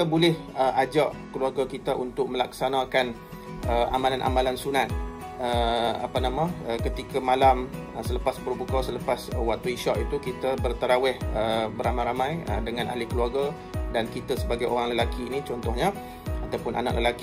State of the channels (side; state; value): both; identical; correlation 1.00